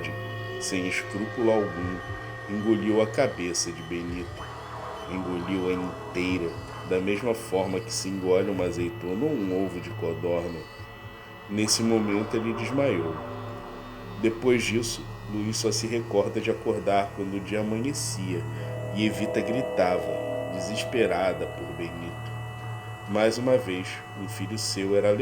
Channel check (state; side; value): identical; both; correlation 1.00